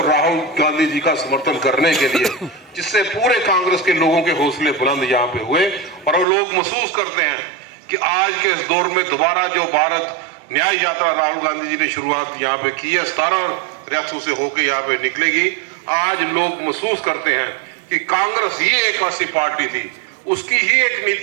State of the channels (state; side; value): drops out; left; at 6.2 s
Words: राहुल गांधी जी का समर्थन करने के लिए, जिससे पूरे कांग्रेस के लोगों के हौसले बुलंद यहाँ पे हुए। और वो लोग महसूस करते हैं कि आज के इस दौर में दोबारा जो भारत न्याय यात्रा राहुल गांधी जी ने शुरुआत यहाँ पे की है, 17 रियासतों से होकर यहाँ पे निकलेगी। आज लोग महसूस करते हैं कि कांग्रेस ही एक ऐसी पार्टी थी, उसकी ही एक